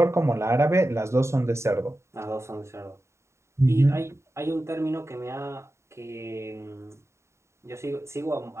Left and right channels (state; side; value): late; left; 0.13 ms